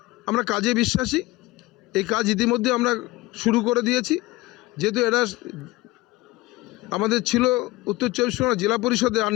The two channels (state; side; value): quieter; right; 19.7 dB